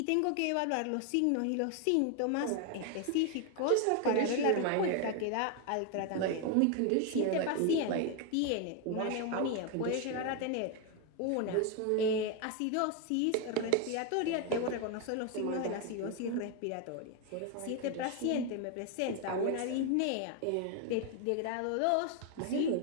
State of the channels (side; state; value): both; different; correlation 0.01